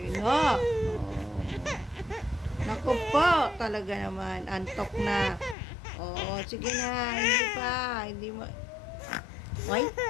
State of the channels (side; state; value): right; drops out; at 5.6 s